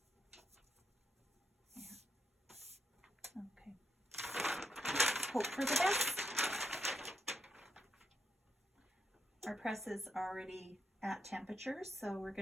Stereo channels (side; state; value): both; normal; correlation 0.80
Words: Yeah. Okay. Hope for the best. Our press is already at temperature, so we're